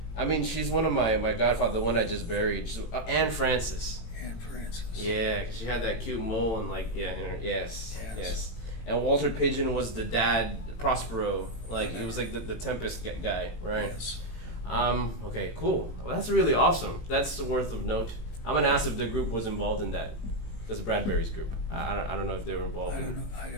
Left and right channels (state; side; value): late; right; 18 ms